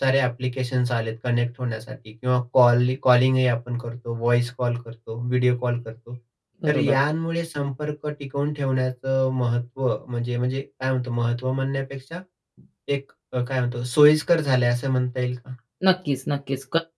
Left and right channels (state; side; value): identical; both; correlation 1.00